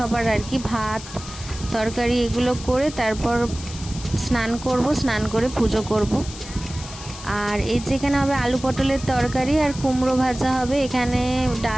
আর কি ভাত তরকারি এগুলো করে তারপর স্নান করব, স্নান করে পুজো করব। আর এই যেখানে হবে আলু পটলের তরকারি আর কুমড়ো ভাজা হবে, এখানে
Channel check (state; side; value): noise; left; hiss, 14 dB below the sound